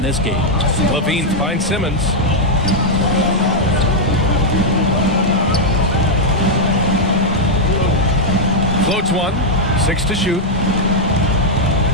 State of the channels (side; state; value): both; normal; correlation -0.03